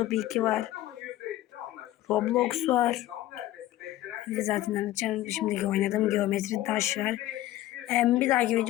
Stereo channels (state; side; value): quieter; right; 15.1 dB